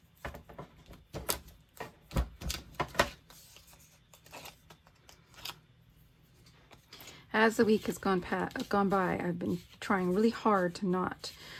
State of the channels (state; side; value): identical; both; correlation 1.00